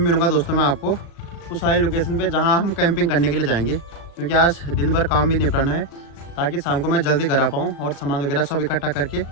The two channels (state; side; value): late; right; 35 ms